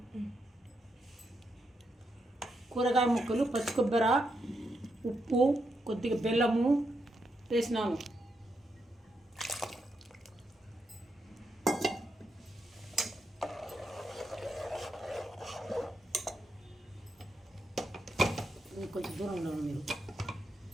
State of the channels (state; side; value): normal; both; correlation 0.82